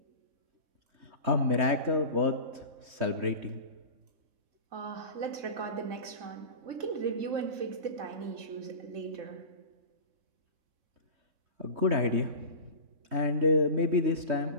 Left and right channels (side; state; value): left; late; 3.2 ms